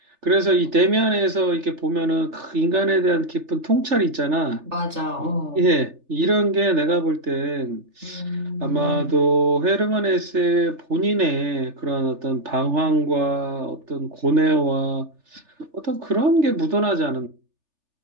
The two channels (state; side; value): late; left; 3.4 ms